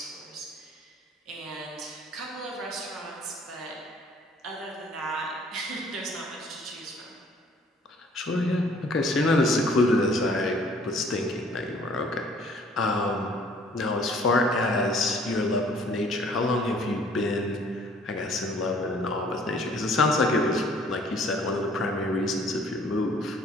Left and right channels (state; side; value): normal; both; correlation 0.57